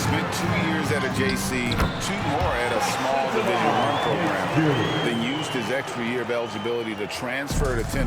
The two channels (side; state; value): both; identical; correlation 1.00